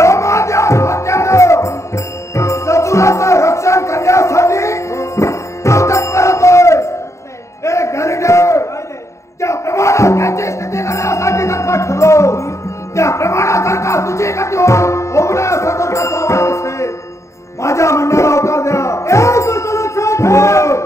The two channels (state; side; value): late; right; 0.14 ms